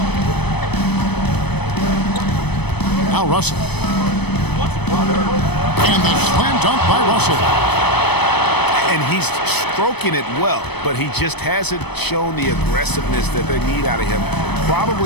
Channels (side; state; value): right; late; 0.98 ms